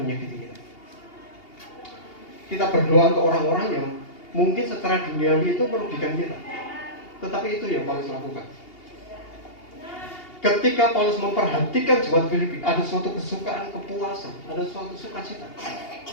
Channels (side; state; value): right; late; 2.8 ms